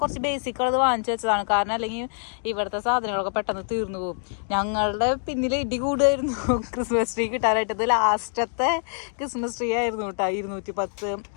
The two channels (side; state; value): right; silent; digital silence